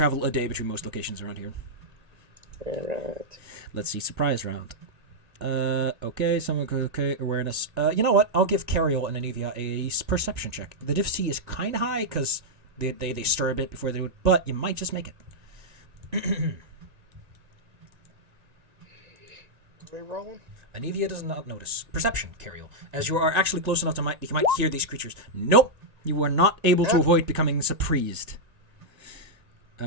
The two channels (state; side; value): late; left; 1.9 ms